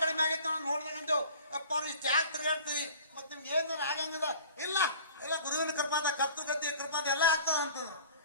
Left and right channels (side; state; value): both; inverted; correlation -0.43